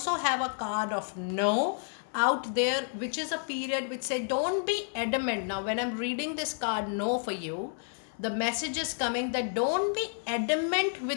have a card of no out there, which is a period which say don't be adamant. Now when I'm reading this card no for you, the message is coming that don't be adamant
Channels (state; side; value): silent; right; 58 dB below the other